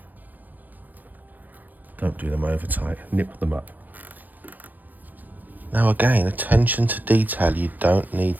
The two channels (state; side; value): late; left; 0.087 ms